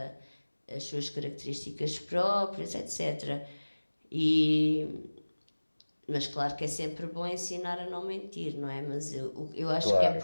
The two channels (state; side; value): inverted; both; correlation -1.00